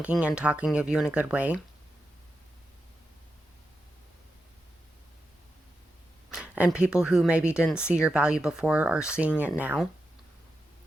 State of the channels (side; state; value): both; normal; correlation 0.88